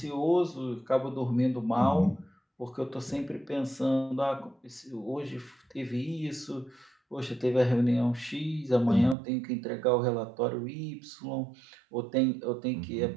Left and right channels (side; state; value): left; drops out; at 9.2 s